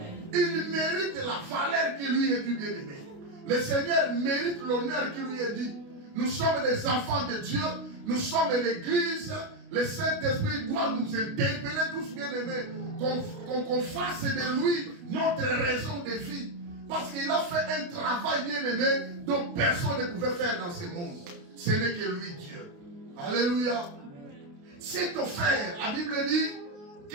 Il mérite la valeur qui lui est due, bien-aimé. Le Seigneur mérite l'honneur qui lui est dit. Nous sommes des enfants de Dieu. Nous sommes l'Église. Le Saint-Esprit doit nous interpeller tous, bien-aimés. Qu'on fasse de lui notre raison de vie. Parce qu'il a fait un travail, bien-aimé, dont personne ne pouvait faire dans ce monde. Ce n'est que lui, Dieu. Alléluia. C'est offert, la Bible dit,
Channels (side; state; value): left; late; 29 ms